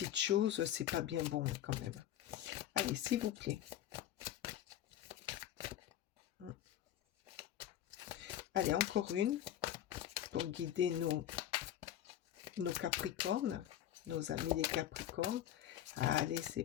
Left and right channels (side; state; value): right; quieter; 11.7 dB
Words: choses. C'est pas bien bon quand même. Allez, s'il vous plaît. Allez, encore une pour guider nos Capricornes, nos amis les Capricornes. Allez, c'est